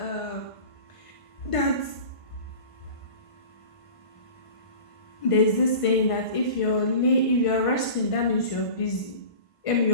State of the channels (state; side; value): late; right; 1.5 ms